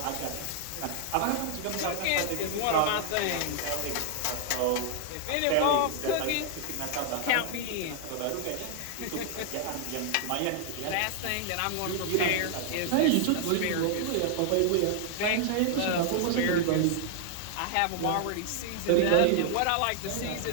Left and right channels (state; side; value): different; both; correlation 0.00